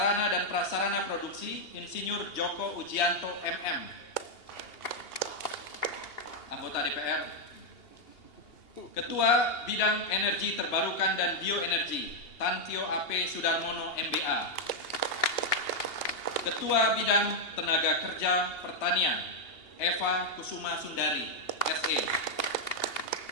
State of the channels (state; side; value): late; right; 2.8 ms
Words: dan Prasarana Produksi Insinyur Joko Ujianto MM. Anggota DPR. Ketua Bidang Energi Terbarukan dan Bioenergi Tantio AP Sudarmono MBA. Ketua Bidang Tenaga Kerja Pertanian Eva Kusuma Sundari SE.